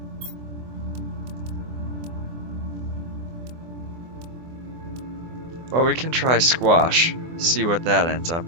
Well, we can try squash. See what that ends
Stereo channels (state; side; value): late; left; 24 ms